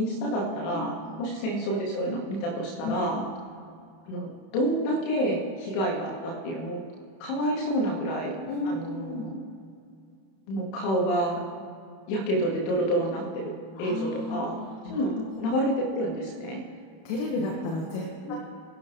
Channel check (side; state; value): right; late; 31 ms